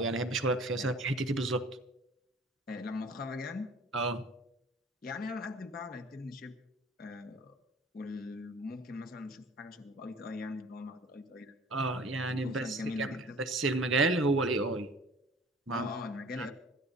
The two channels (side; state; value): both; normal; correlation 0.48